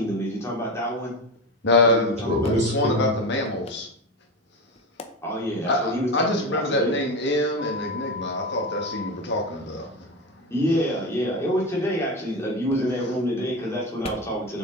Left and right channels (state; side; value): normal; both; correlation 0.21